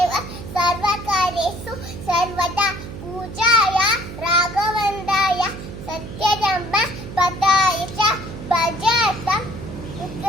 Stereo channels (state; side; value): noise; right; hum, 11 dB below the sound